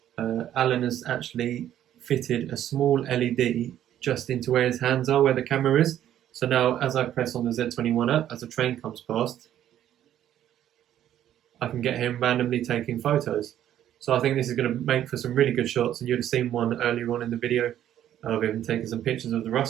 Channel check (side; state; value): left; quieter; 11.4 dB